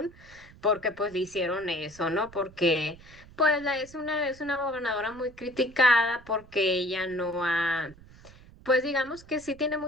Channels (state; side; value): noise; right; rumble, 22 dB below the sound